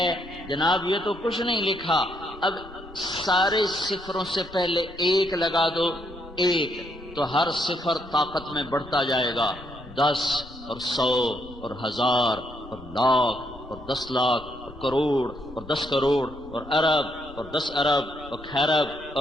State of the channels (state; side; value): normal; both; correlation 0.75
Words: جناب یہ تو کچھ نہیں لکھا، اب سارے صفروں سے پہلے ایک لگا دو، ایک، تو ہر صفر طاقت میں بڑھتا جائے گا، 10 اور 100 اور 1000 اور لاکھ اور 10 لاکھ اور کروڑ اور 10 کروڑ اور ارب اور 10 ارب اور خیرب